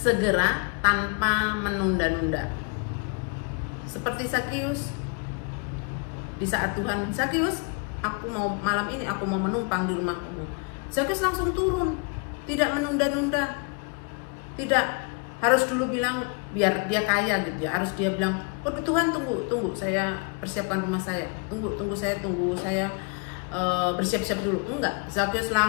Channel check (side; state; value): right; quieter; 34.2 dB